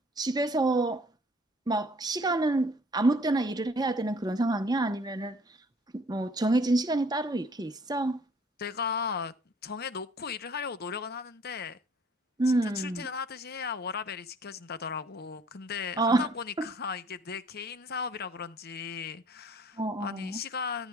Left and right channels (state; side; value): normal; both; correlation 0.58